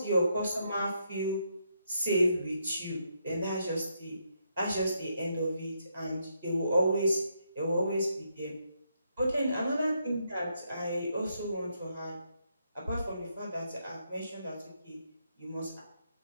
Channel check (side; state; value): both; inverted; correlation -0.78